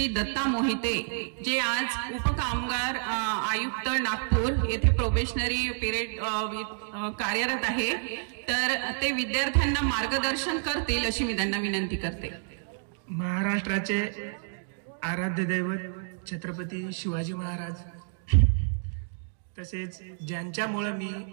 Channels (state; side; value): silent; left; digital silence